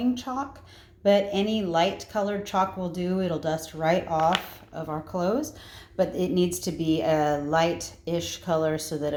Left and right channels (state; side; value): identical; both; correlation 1.00